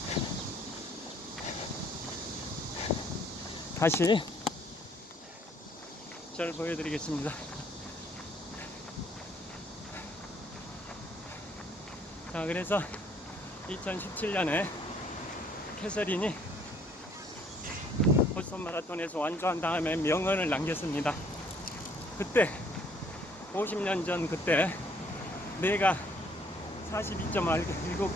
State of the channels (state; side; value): normal; both; correlation 0.63